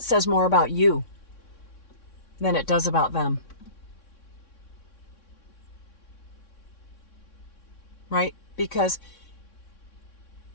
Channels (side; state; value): right; late; 3.6 ms